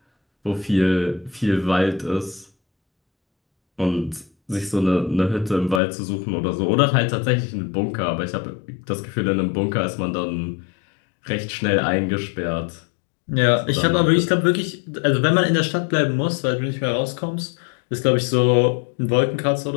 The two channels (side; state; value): right; drops out; at 5.8 s